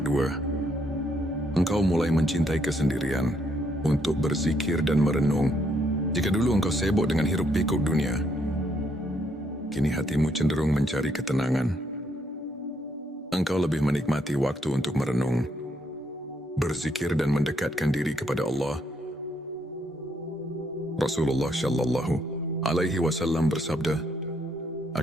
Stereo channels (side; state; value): both; normal; correlation 0.73